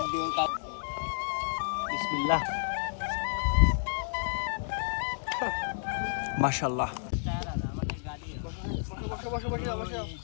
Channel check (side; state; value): right; silent; digital silence